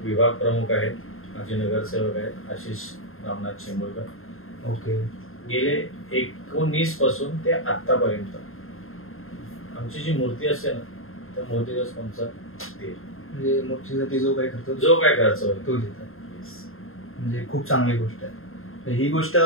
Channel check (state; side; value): late; right; 0.61 ms